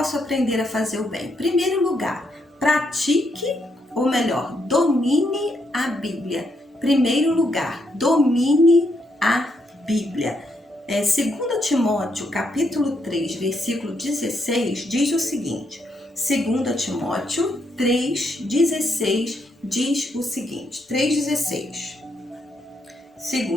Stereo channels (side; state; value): both; normal; correlation 0.77